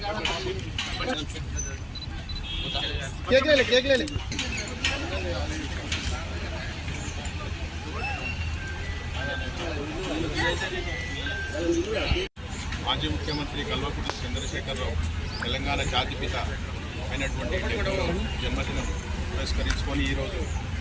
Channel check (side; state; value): both; identical; correlation 1.00